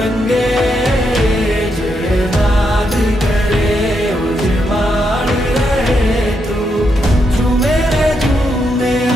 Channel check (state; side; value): normal; both; correlation 0.81